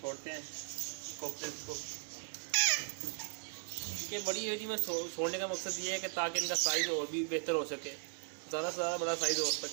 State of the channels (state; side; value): silent; left; 53 dB below the other